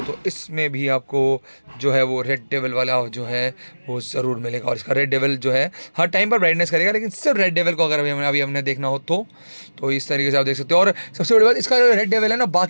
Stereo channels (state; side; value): inverted; both; correlation -1.00